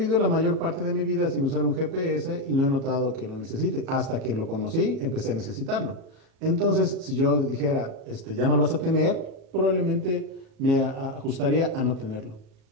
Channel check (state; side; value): late; left; 37 ms